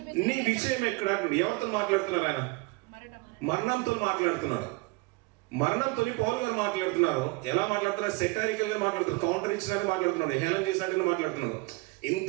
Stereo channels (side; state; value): left; quieter; 25.2 dB